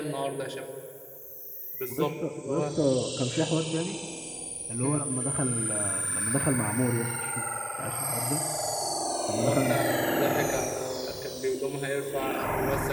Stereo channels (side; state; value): both; identical; correlation 1.00